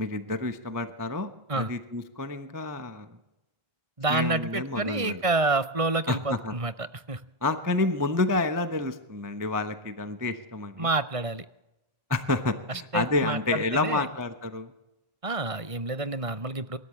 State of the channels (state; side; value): late; left; 1.5 ms